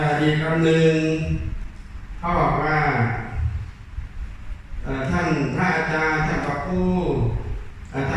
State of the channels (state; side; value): identical; both; correlation 1.00